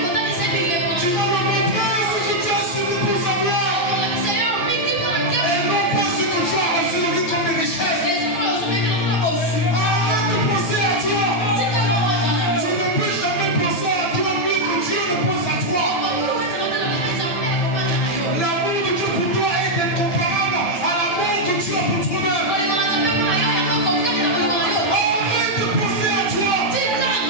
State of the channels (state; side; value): late; right; 8.8 ms